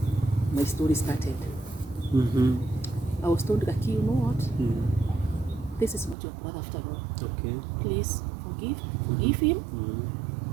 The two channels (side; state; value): left; drops out; at 6.2 s